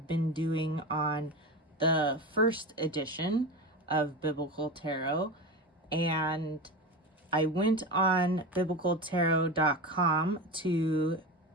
been doing on the first edition of Biblical Tarot, and I went on biblicaltarot.com to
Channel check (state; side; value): normal; both; correlation 0.24